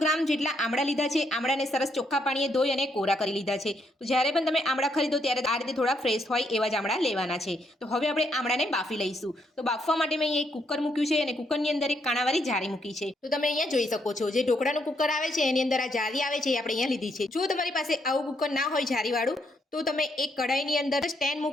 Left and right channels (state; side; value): normal; both; correlation 0.75